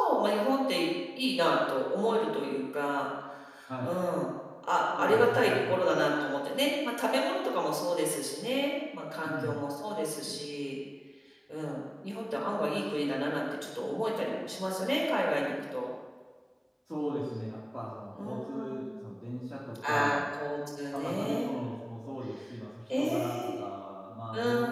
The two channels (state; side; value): identical; both; correlation 1.00